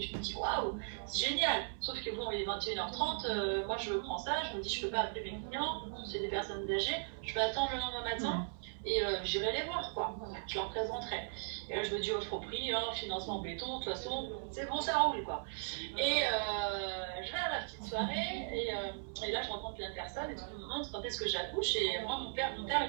Je me dis waouh, c'est génial. Sauf que bon, il est 21h30, moi je prends ça, je me dis je peux pas appeler mes clients, c'est des personnes âgées, je peux attendre le lendemain matin. Et j'irai les voir, quoi. Je leur présenterai. Et là, je me dis offre au prix, hein, financement béton, de toute façon, c'est bon, ça roule, quoi. Et je vais à la petite soirée, et là, je rencontre la personne, et tout le monde quand est-ce que j'accouche. Et moi, mon père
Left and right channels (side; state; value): left; silent; 53 dB below the other